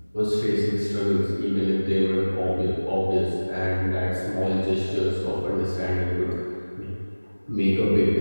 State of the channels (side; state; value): both; inverted; correlation -1.00